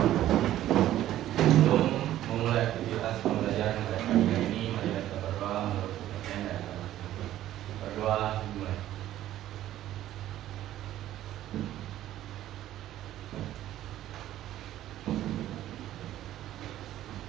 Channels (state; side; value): quieter; left; 13.2 dB